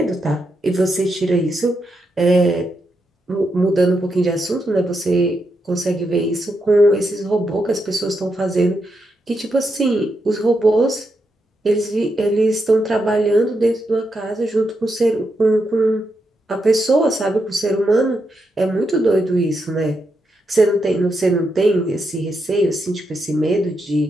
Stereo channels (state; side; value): normal; both; correlation 0.83